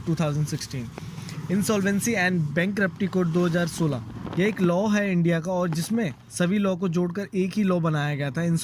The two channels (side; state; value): both; identical; correlation 1.00